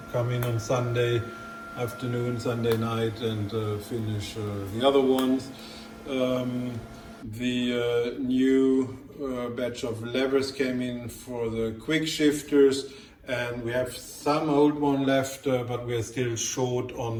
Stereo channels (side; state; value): both; identical; correlation 1.00